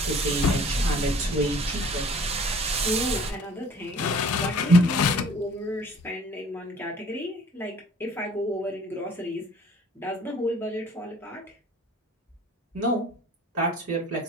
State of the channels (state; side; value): normal; both; correlation 0.51